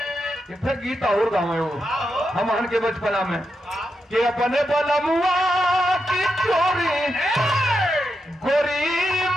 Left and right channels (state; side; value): normal; both; correlation 0.85